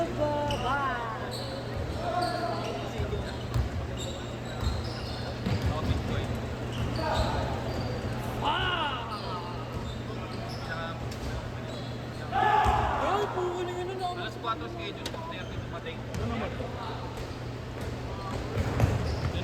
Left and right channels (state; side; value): identical; both; correlation 1.00